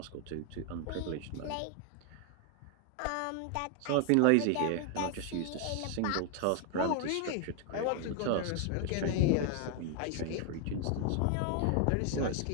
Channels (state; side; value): different; both; correlation 0.00